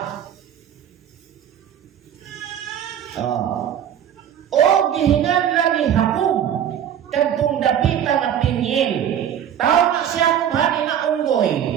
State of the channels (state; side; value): quieter; left; 9.7 dB